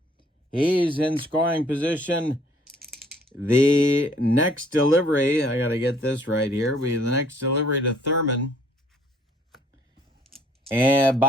He's in scoring position. The next delivery, I got to get this right here, the next delivery to Thurman and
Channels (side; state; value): both; normal; correlation 0.60